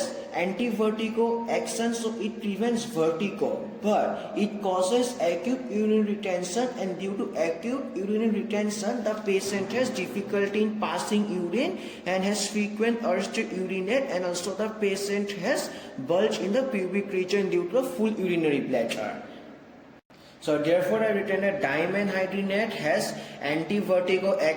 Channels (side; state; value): both; identical; correlation 1.00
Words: anti-vertigo action, so it prevents vertigo, but it causes acute urinary retention, and due to acute urinary retention the patient has difficulty in passing urine and has frequent urge to urinate, and also the patient has bulge in the pubic region due to a full urinary bladder. So therefore I written that dimenhydrinate has anti-vertigo